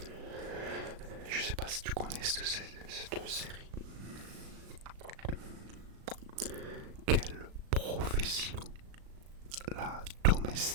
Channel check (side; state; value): left; late; 36 ms